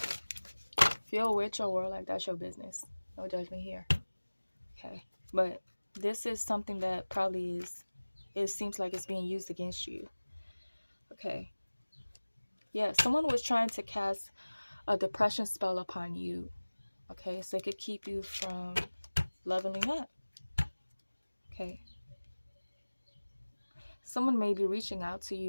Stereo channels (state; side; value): inverted; both; correlation -1.00